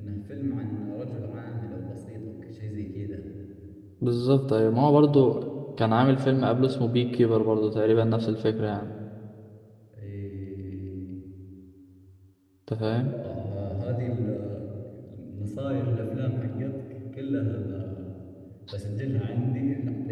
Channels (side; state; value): both; identical; correlation 1.00